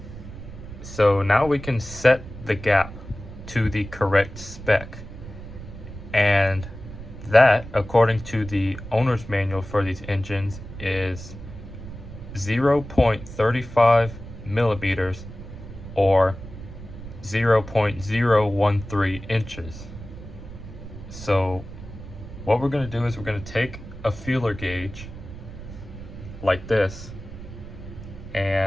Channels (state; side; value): noise; right; rumble, 13 dB below the sound